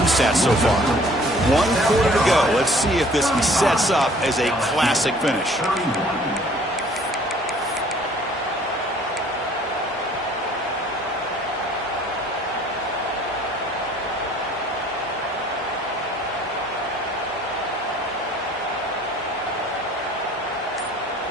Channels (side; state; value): both; normal; correlation 0.55